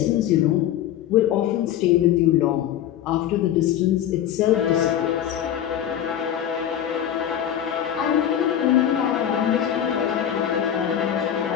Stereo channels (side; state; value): right; quieter; 10.5 dB